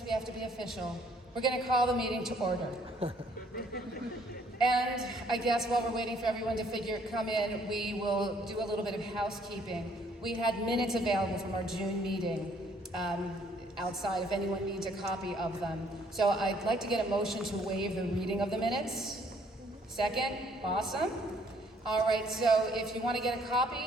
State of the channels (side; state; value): both; normal; correlation 0.63